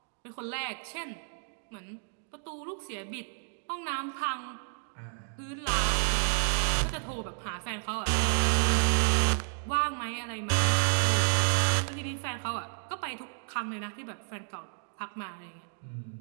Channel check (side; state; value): left; silent; 57 dB below the other